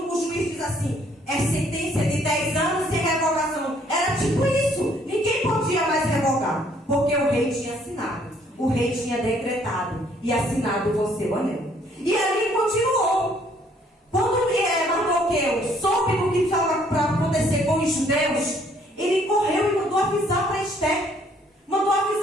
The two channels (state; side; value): normal; both; correlation 0.64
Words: o juiz diz assim, é sentença de 10 anos sem revogação. Era tipo isso. Ninguém podia mais revogar, porque o rei tinha assinado. O rei tinha decretado e assinado com seu anel. E ali continuou. Quando Mardoqueu soube do que estava para acontecer com os judeus, ele correu e mandou avisar para Esther. Mandou